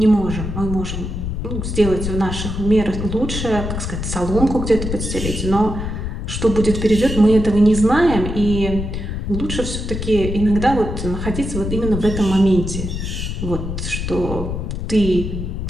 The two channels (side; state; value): left; noise; rumble, 4 dB below the sound